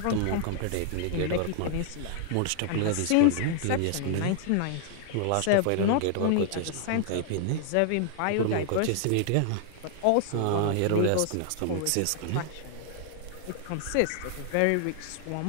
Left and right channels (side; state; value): both; different; correlation 0.00